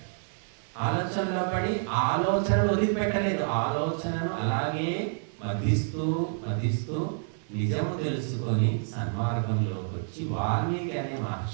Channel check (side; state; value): left; silent; 57 dB below the other